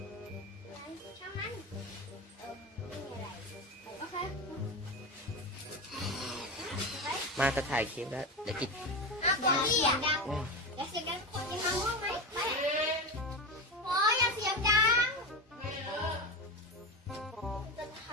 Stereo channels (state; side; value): normal; both; correlation 0.20